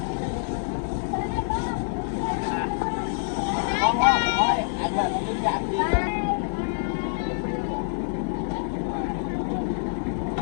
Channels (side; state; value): right; silent; digital silence